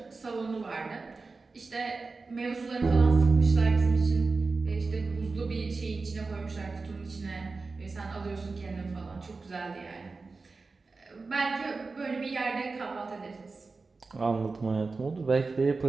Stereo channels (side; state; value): left; quieter; 4.0 dB